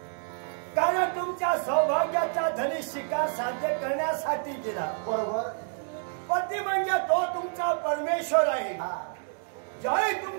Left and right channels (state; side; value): silent; left; 56 dB below the other